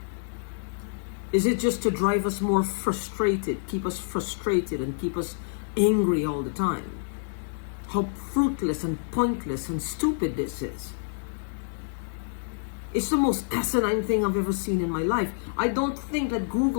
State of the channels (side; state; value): right; silent; 60 dB below the other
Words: Is it just to drive us more frustrated, keep us frustrated and keep us angry all the time? how fruitless and pointless and stupid this is. It's the most asinine thing I've ever seen in my life. I don't think that